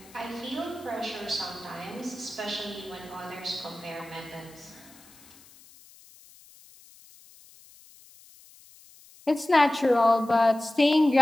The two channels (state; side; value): noise; left; hiss, 24 dB below the sound